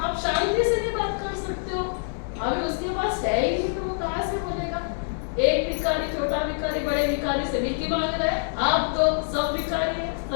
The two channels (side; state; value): right; silent; 61 dB below the other